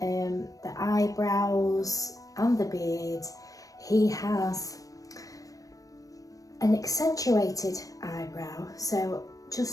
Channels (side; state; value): right; late; 0.17 ms